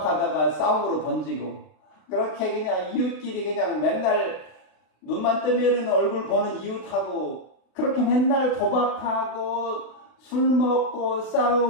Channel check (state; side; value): late; right; 32 ms